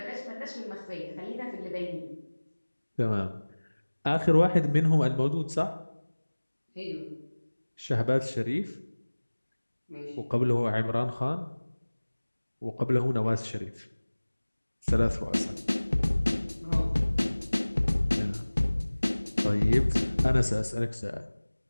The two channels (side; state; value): both; inverted; correlation -1.00